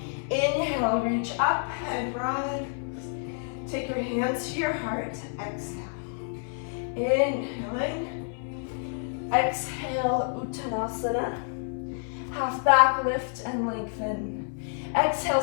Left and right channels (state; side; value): silent; right; 59 dB below the other